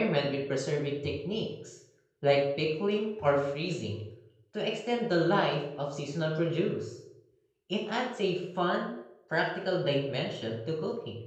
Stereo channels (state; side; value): identical; both; correlation 1.00